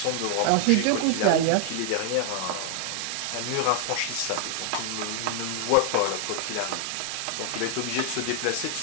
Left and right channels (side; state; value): both; different; correlation 0.00